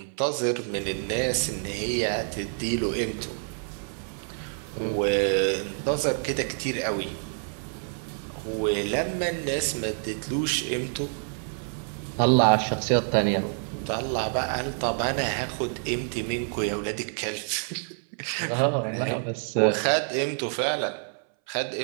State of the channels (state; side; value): silent; left; 60 dB below the other